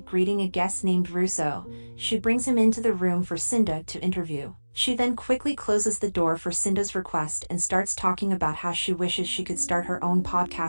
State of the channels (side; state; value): both; inverted; correlation -1.00